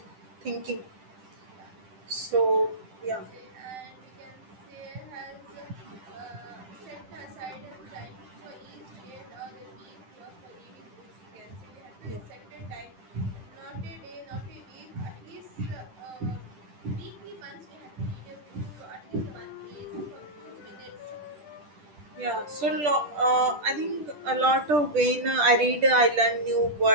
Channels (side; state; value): left; late; 10 ms